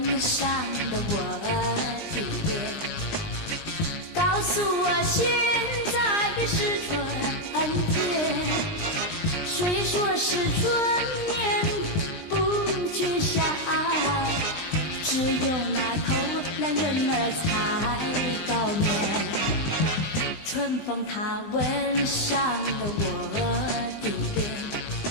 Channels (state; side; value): late; right; 20 ms